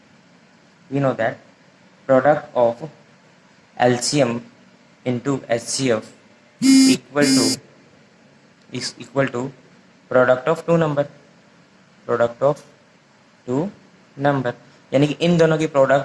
product of LCM into HCF equal to product of two number, यानी कि इन दोनों की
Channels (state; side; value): identical; both; correlation 1.00